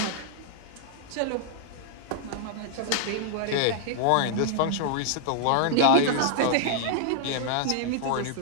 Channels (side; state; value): both; different; correlation -0.01